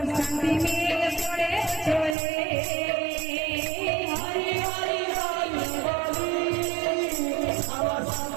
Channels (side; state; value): left; drops out; at 2.1 s